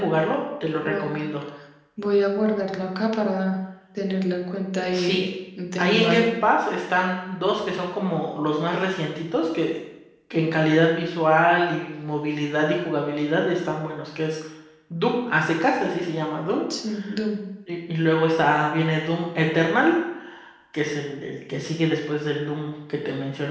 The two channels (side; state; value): both; identical; correlation 1.00